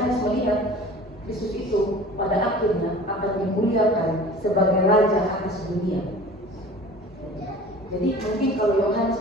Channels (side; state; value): both; normal; correlation 0.43